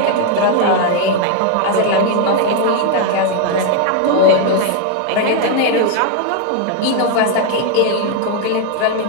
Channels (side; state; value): both; different; correlation 0.01